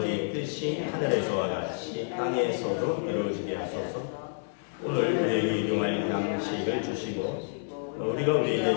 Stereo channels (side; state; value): right; silent; digital silence